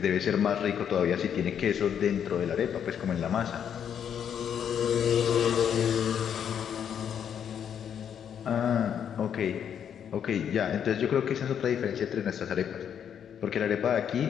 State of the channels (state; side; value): quieter; right; 8.5 dB